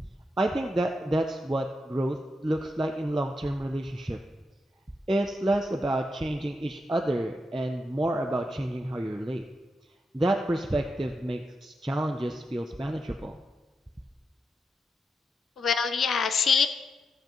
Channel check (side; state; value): both; normal; correlation 0.85